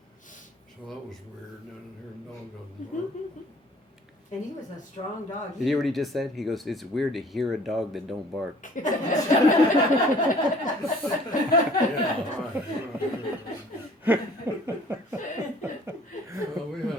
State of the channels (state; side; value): normal; both; correlation 0.53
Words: So that was weird. And here a dog doesn't bark. And he was a strong dog. Did you hear what he just said? He goes, "It's weird to hear a dog that don't bark." Yeah, right. Well, we